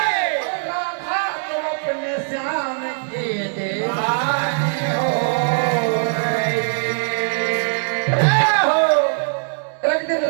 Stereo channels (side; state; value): left; silent; digital silence